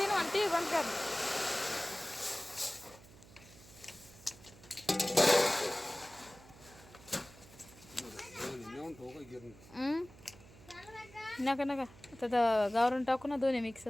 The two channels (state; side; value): noise; right; hum, 21 dB below the sound